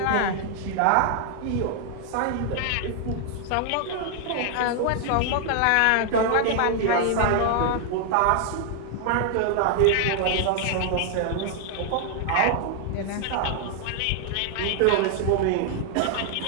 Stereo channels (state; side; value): different; both; correlation 0.00